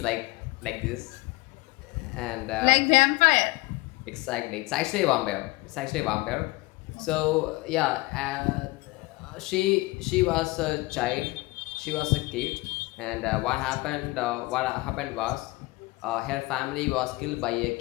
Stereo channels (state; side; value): quieter; right; 22.4 dB